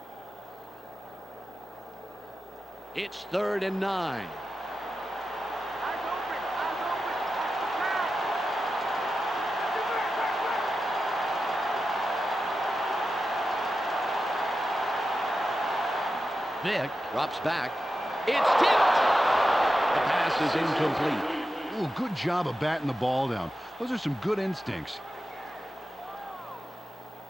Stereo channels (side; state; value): both; normal; correlation 0.91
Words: It's 3rd and 9. Eyes open. Eyes open. Vick drops back. It's tipped. The pass is incomplete. Ooh, good job of batting the ball down. Those are some good instincts.